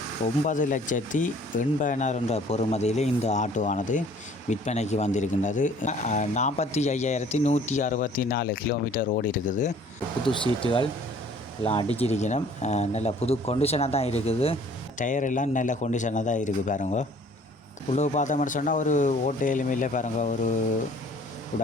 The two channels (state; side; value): normal; both; correlation 0.54